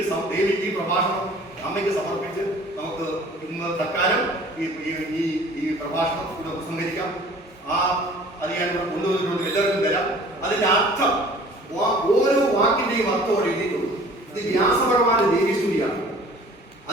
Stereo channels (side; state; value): both; normal; correlation 0.49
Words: പ്രഭാഷണം അമ്മയ്ക്ക് സമർപ്പിച്ച് നമുക്ക് ഇന്ന് തൽക്കാലം ഈ പ്രഭാഷണം ഇവിടെ ഉപസംഹരിക്കാം. അത് ഞാൻ ഇവിടെ കൊണ്ടുവന്നിട്ടുണ്ട്, എല്ലാവർക്കും തരാം. അതിന്റെ അർത്ഥം ഓരോ വാക്കിന്റെയും അർത്ഥം എഴുതിയിട്ടുണ്ട്. ഇത് വ്യാസഭഗവാന്റെ ദേവീസ്തുതിയാണ്.